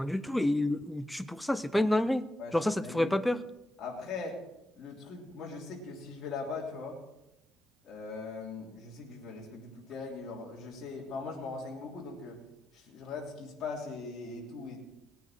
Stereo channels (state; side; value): normal; both; correlation 0.87